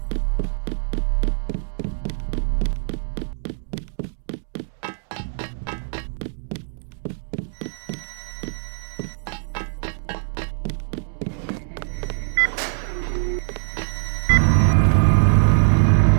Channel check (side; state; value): left; silent; 63 dB below the other